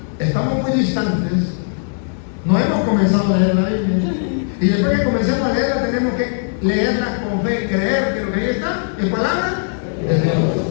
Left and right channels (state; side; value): silent; right; 67 dB below the other